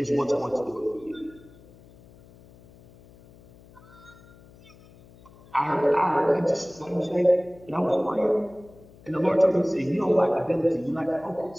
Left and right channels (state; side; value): noise; left; hum, 24 dB below the sound